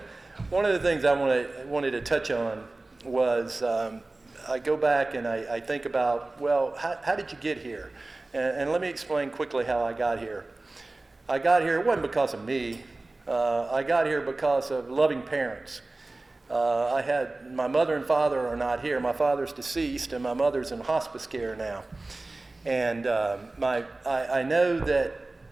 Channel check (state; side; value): quieter; left; 3.1 dB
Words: the things I wanted to touch on was I go back and I think about, well, how did you get here? And let me explain quickly how I got here. I got here, it wasn't because of me. I got here because of loving parents. My mother and father are not here. My father's deceased and my mother's in hospice care now. And I know that,